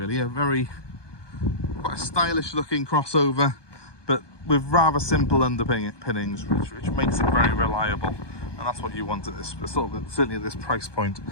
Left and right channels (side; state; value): right; late; 1.2 ms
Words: Quite a stylish looking crossover, but with rather simple underpinnings, which makes it very reliable, and that's what you want at this, certainly at this price point.